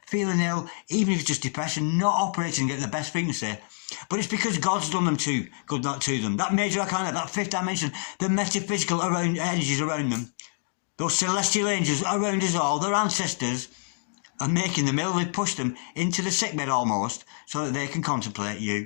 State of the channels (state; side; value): silent; right; 60 dB below the other